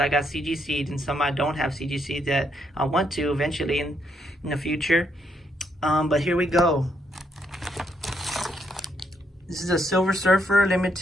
got CGC'd, and some I don't have CGC that I want to eventually in the future. But here we go. This is a Silver Surfer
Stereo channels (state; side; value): normal; both; correlation 0.75